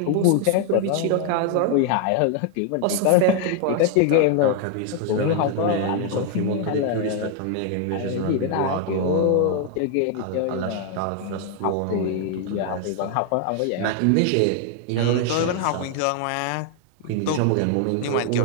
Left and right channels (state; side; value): different; both; correlation 0.00